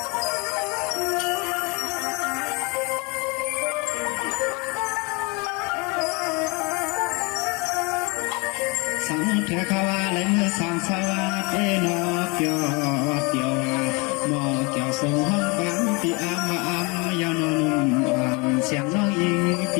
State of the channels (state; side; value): quieter; right; 28.7 dB